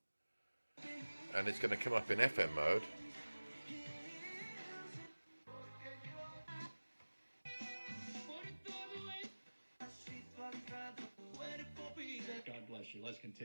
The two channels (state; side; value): inverted; both; correlation -1.00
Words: and it's going to come up in FM mode. God bless you. Let's